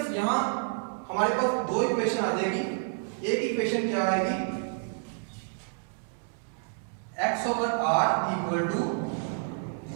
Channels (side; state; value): left; silent; 58 dB below the other